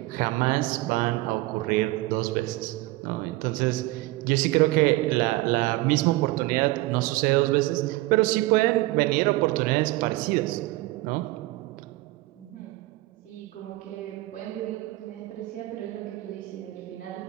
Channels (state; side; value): quieter; left; 19.4 dB